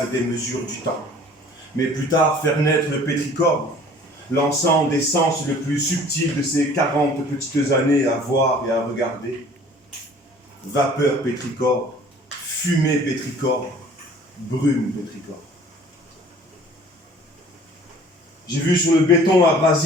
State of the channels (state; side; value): normal; both; correlation 0.50